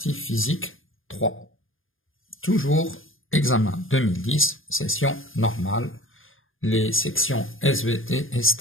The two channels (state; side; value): late; right; 0.59 ms